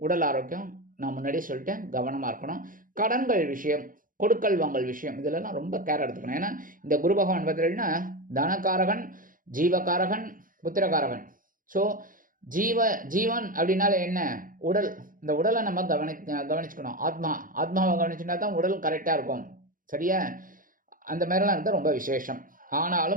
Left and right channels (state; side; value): late; left; 0.40 ms